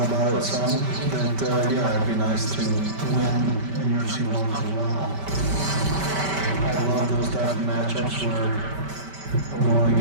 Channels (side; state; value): left; late; 5.2 ms